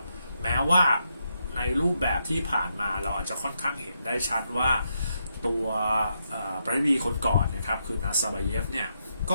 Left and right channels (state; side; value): inverted; both; correlation -0.81